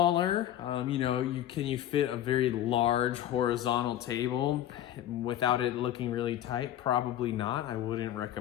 You know, you fit a very large horizontal table without it looking really tight? Probably not. I wouldn't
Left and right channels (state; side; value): quieter; right; 11.9 dB